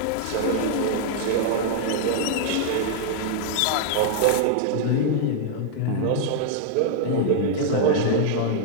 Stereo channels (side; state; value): both; different; correlation -0.01